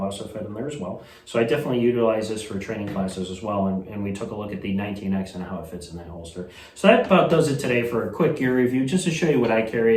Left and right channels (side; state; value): both; identical; correlation 1.00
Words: also fit in there as well. So I definitely utilize this for training classes as well, and we took a look at the 19X and how it fits in that holster. So that about does it today for a quick gear review, just to show you what I